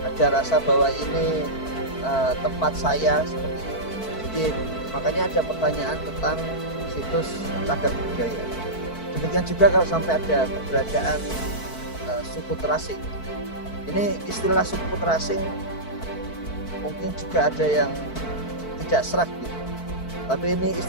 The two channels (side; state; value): right; late; 4.5 ms